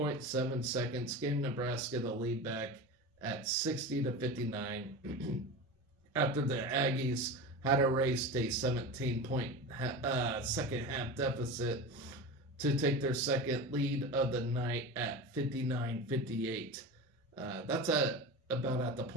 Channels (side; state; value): both; normal; correlation 0.28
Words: seconds, gave Nebraska the lead back at 60-59 after the Aggies had erased a 17-point second half deficit to take their second lead of the night at 59-58. That's about at the